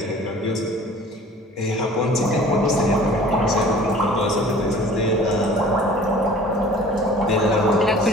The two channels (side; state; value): both; normal; correlation 0.47